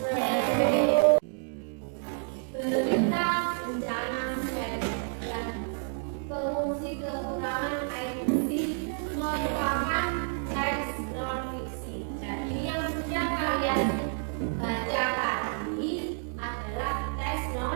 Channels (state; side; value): silent; left; 56 dB below the other